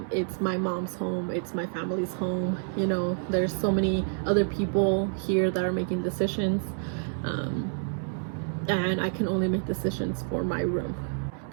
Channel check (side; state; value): left; silent; digital silence